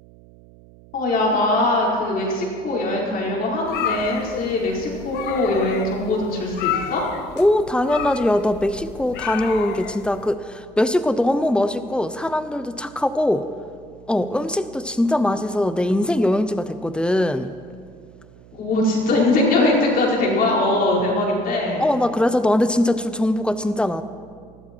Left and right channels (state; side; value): noise; right; hum, 24 dB below the sound